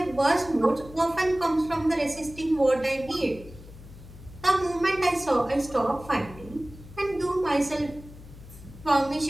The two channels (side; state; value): left; noise; hum, 17 dB below the sound